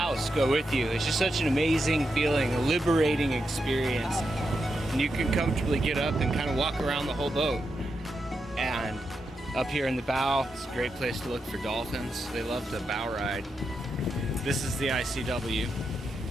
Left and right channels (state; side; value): normal; both; correlation 0.85